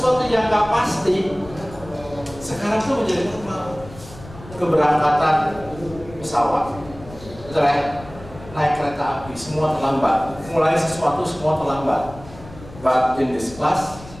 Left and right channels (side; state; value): left; noise; rumble, 17 dB below the sound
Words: yang nggak pasti sekarang tuh menjadi normal. Keberangkatan pesawat, betul ya? Naik kereta api, semua terlambat. Mulai sesuatu semua terlambat. But in this class,